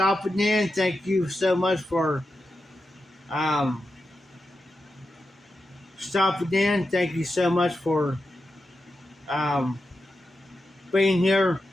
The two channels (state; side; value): normal; both; correlation 0.89